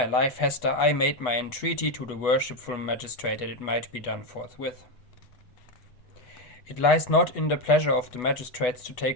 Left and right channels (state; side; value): late; right; 8.1 ms